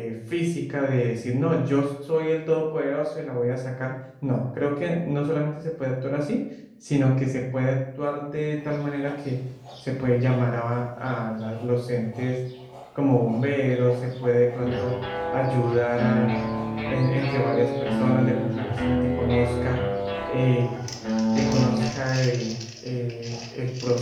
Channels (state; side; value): identical; both; correlation 1.00